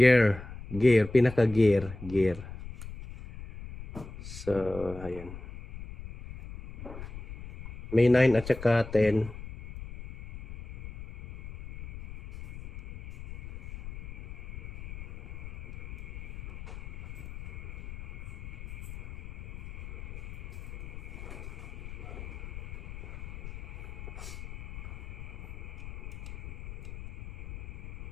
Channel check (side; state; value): left; noise; rumble, 11 dB below the sound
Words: Pinaka-gear. Gear. So, ayan. May 9 at saka 10.